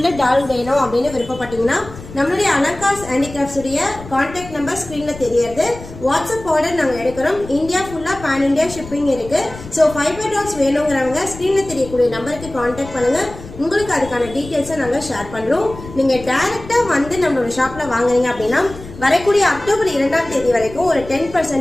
டால் வேணும் அப்படின்னு விருப்பப்பட்டீங்கன்னா நம்மளுடைய அலங்கார் ஹேண்டிகிராஃப்ட்ஸ் உடைய கான்டாக்ட் நம்பர் ஸ்கிரீன்ல தெரியறது. வாட்ஸ்அப் ஆர்டர் நாங்கள் எடுக்கிறோம். இந்தியா ஃபுல்லா பேன் இந்தியா ஷிப்பிங் இருக்கு. ஸோ ஃபைபர் டால்ஸ் வேணுங்கிறவங்க ஸ்கிரீன்ல தெரியக்கூடிய நம்பருக்கு கான்டாக்ட் பண்ணுங்க. உங்களுக்கு அதுக்கான டீட்டெயில்ஸை நாங்கள் ஷேர் பண்றோம். நீங்க டைரக்டா வந்து நம்மளோட ஷாப்ல வாங்குறீங்க அப்படின்னா வரக்கூடிய அக்டோபர் 2ஆம் தேதி வரைக்கும் ஒரு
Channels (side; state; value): left; noise; rumble, 15 dB below the sound